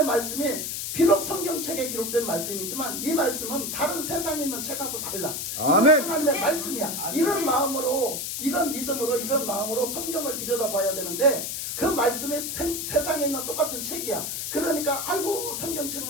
말씀이 비록 성경책에 기록된 말씀이지만 이 말씀은 다른 세상에 있는 책하고 달라. 아멘. 이건 하나님의 말씀이야. 이런 마음으로 이런 믿음으로 이런 마음으로 성경을 들여다봐야 되는데 그 말씀이 세상에 있는 똑같은 책이야. 그러니까 아이고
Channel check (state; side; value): noise; left; hiss, 4 dB below the sound